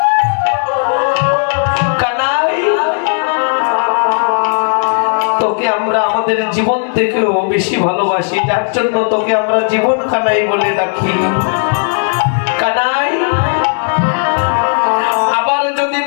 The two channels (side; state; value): right; silent; 68 dB below the other